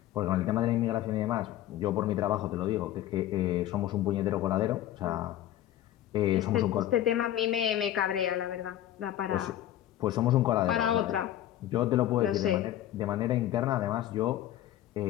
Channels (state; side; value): quieter; right; 12.9 dB